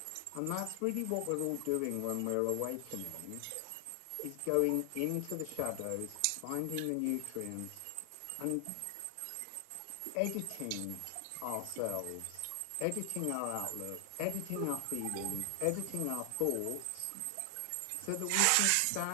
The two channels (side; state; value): both; different; correlation 0.00